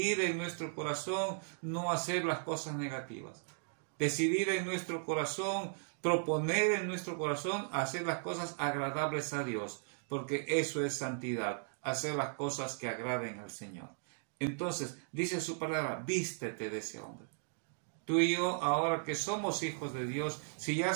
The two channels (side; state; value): left; silent; digital silence